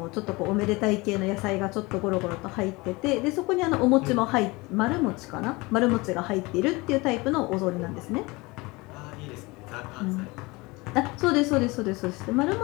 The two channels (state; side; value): quieter; right; 23.9 dB